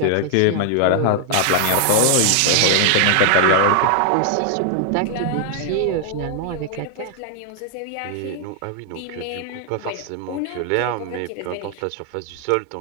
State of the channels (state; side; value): different; both; correlation 0.00